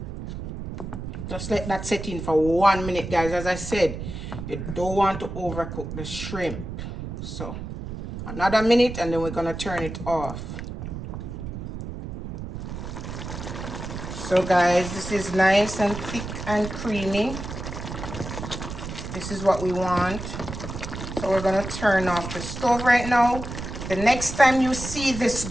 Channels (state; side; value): noise; right; rumble, 8 dB below the sound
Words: Just let that set in for 1 minute, guys. As I said, you don't want to overcook the shrimp. So another minute and then we're gonna turn it off. So guys, this is nice and thick and creamy. This is what we want. So we're gonna turn off the stove right now. The next time you see this